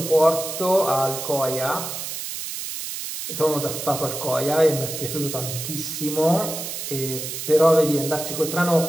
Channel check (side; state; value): right; noise; hiss, 6 dB below the sound